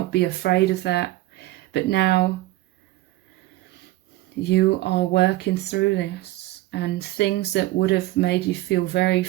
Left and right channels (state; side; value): quieter; left; 17.1 dB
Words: be afraid of that. But now you are working through this, and things that would have made you feel very